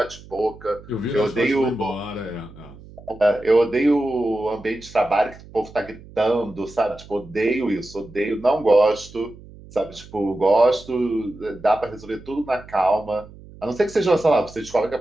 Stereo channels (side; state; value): right; noise; hum, 20 dB below the sound